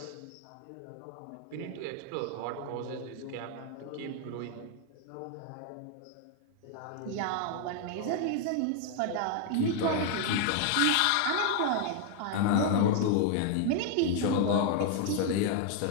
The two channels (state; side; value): different; both; correlation 0.00